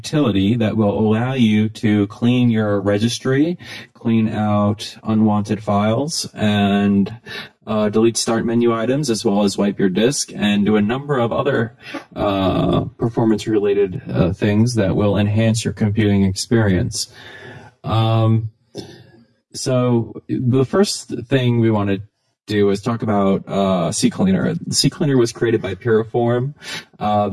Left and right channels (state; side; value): identical; both; correlation 1.00